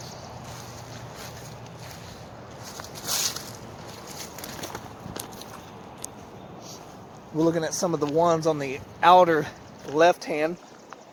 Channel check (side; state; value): both; identical; correlation 1.00